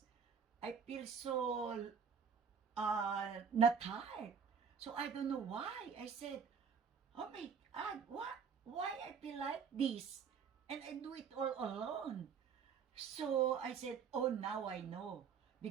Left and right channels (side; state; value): left; quieter; 6.5 dB